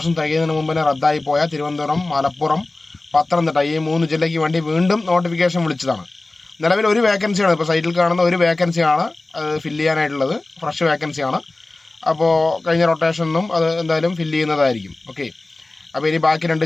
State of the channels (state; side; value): quieter; right; 3.0 dB